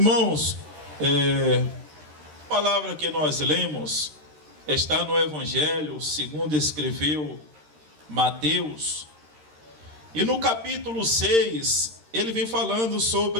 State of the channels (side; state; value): left; late; 13 ms